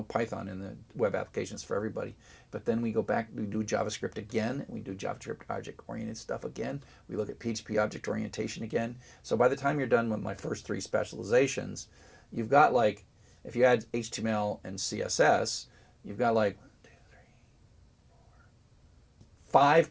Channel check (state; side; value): identical; both; correlation 1.00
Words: Python in the web applications for everybody. But then we go back, we do JavaScript again, we do JavaScript object-oriented stuff again. We look at PHP object orientation again. So by the time you're done with my first three specializations, you've got like, if you add HTML and CSS, you've got like